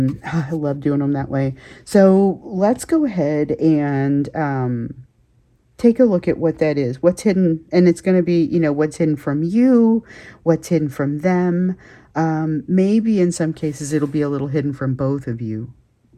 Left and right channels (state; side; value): identical; both; correlation 1.00